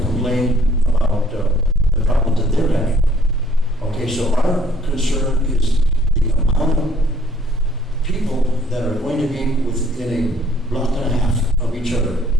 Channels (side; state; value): both; normal; correlation 0.61